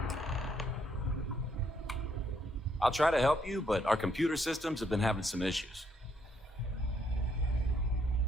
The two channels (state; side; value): normal; both; correlation 0.72